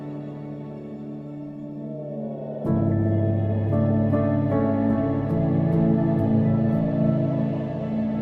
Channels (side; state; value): both; identical; correlation 1.00